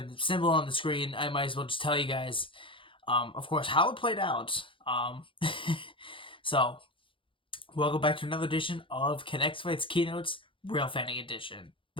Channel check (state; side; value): late; right; 0.25 ms